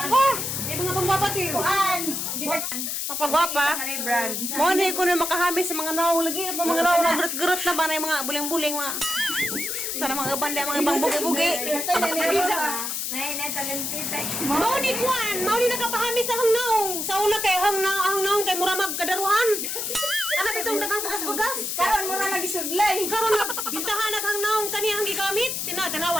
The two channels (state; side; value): noise; left; hiss, 2 dB below the sound